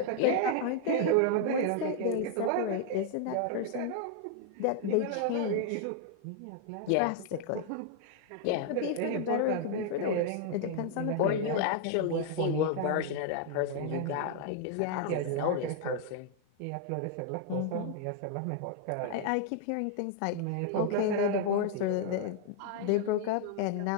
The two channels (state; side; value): different; both; correlation 0.00